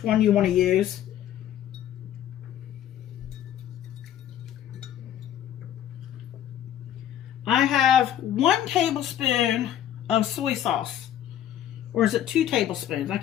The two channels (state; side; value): quieter; right; 11.0 dB